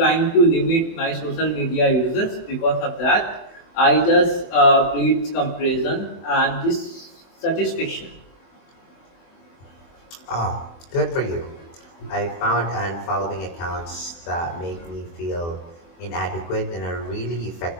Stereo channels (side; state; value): right; late; 24 ms